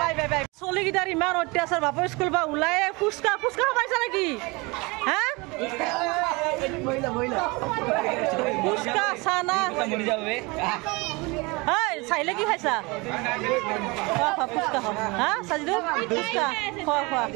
চলিকেইটাৰ ইমান অত্যাচাৰ বাপৰ স্কুল বা ওলাই ফুচকা খাবাইছা নেকি হা ফুচকা চানা চাইলে কি খাইছা ফুচকা খাওঁ হা চাজিদু ফুচকা খোৱা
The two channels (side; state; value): left; quieter; 26.1 dB